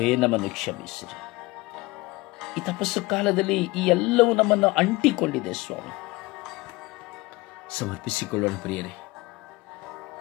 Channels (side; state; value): right; quieter; 22.0 dB